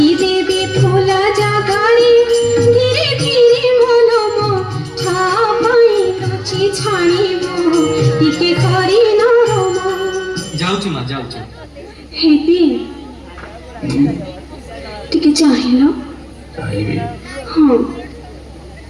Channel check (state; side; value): identical; both; correlation 1.00